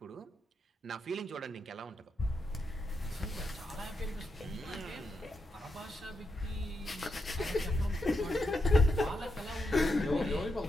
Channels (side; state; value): both; normal; correlation 0.84